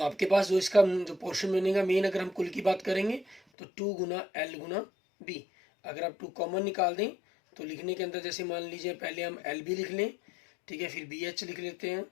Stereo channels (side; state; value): right; drops out; at 3.4 s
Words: पास जो इसका जो पोर्शन बनेगा मेन, अगर हम कुल की बात करेंगे तो 2 गुना एल गुना बी। अगर आप 2 कॉमन निकाल दें तो लिखने के अंदर जैसे मान लीजिए पहले हम एल बी लिख लें, ठीक है, फिर बी एच लिख लेते हैं